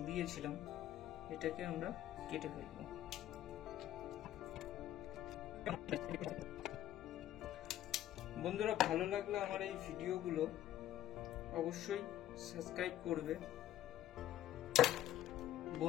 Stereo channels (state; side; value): quieter; right; 12.8 dB